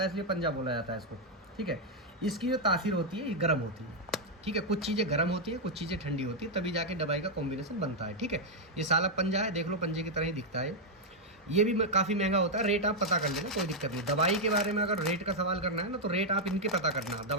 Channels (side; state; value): both; normal; correlation -0.01